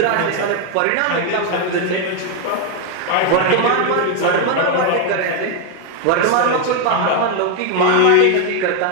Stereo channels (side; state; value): both; different; correlation 0.01